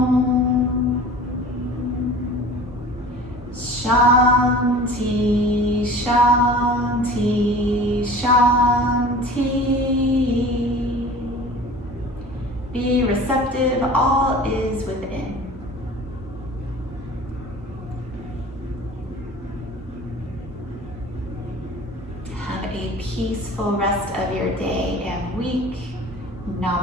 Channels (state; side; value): normal; both; correlation 0.41